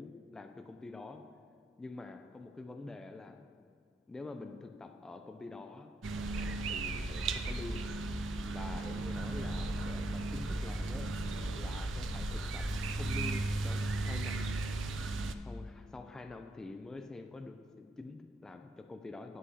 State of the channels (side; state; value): both; normal; correlation 0.79